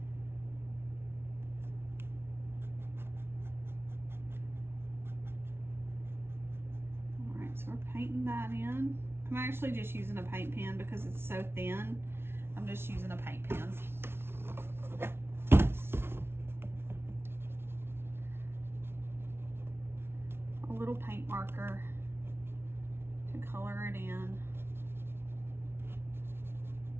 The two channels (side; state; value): left; late; 0.12 ms